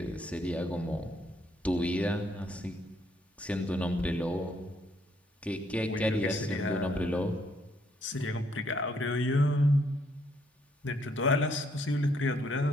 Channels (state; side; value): normal; both; correlation 0.70